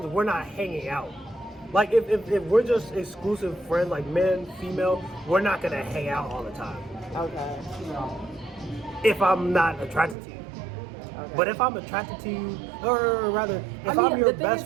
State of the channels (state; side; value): drops out; left; at 10.2 s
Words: we're not hanging out. Like if we're just exclusive friends, like men, female, we're not gonna hang out all the time. Okay. If I'm not attracted to you. Okay. But if I'm attracted to you, or rather, if I'm your best